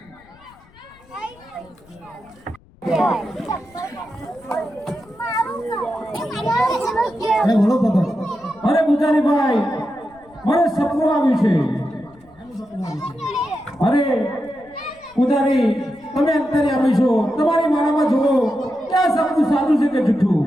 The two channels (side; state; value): left; noise; rumble, 28 dB below the sound